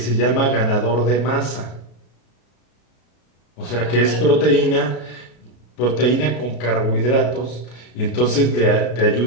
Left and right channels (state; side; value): late; right; 33 ms